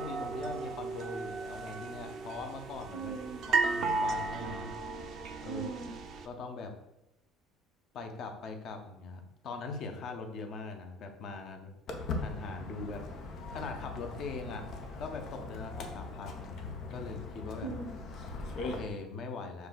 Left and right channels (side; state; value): both; normal; correlation 0.55